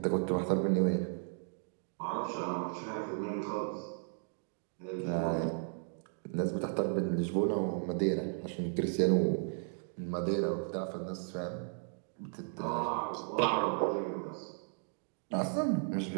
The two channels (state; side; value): silent; left; 54 dB below the other